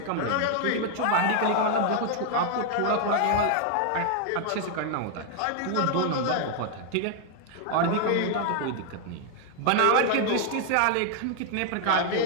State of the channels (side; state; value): both; different; correlation 0.00